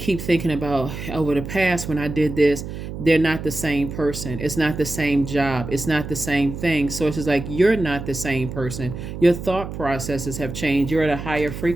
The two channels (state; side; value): noise; right; hum, 8 dB below the sound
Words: thinking about over the past when I did this, they're not the same person. It's not the same job. It's not the same thing. So it's just like, you're not the same person. Your thought processes have changed. You're at a higher